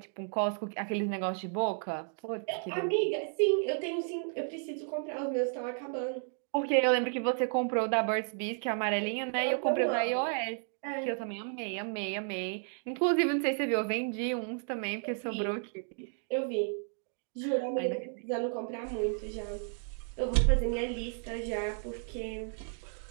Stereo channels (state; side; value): silent; left; 56 dB below the other